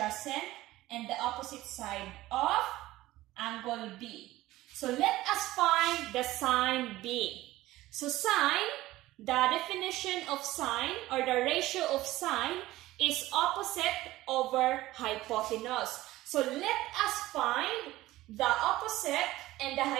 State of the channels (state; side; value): quieter; left; 16.9 dB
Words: and the opposite side of angle B. So, let us find the sine B. So, sine, the definition of sine or the ratio of sine is opposite over hypotenuse. So, let us find the opposite and the